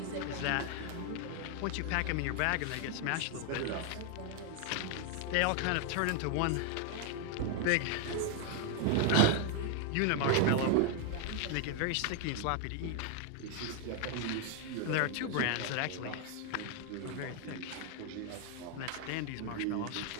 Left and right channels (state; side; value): different; both; correlation 0.00